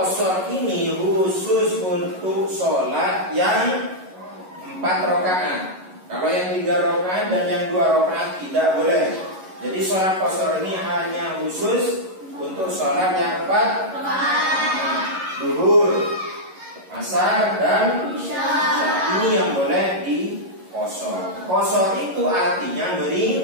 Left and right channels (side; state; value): left; late; 11 ms